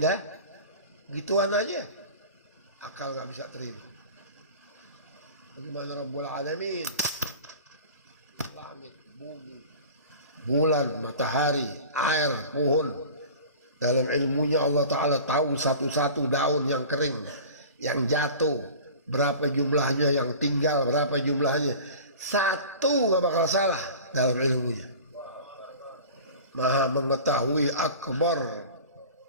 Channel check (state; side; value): inverted; both; correlation -0.39